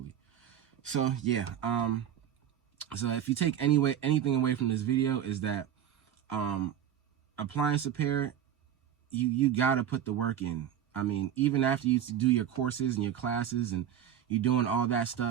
So yeah, so if you take anything away from this video is that appliance repair, you gotta put the work in. I mean, even after you do your courses and your classes and you're doing all that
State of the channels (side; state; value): left; quieter; 9.9 dB